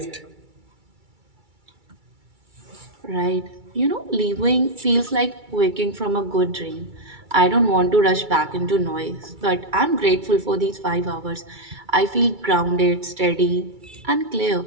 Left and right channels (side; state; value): left; late; 2.3 ms